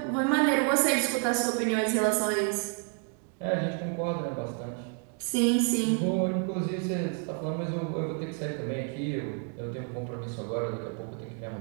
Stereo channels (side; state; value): left; quieter; 38.7 dB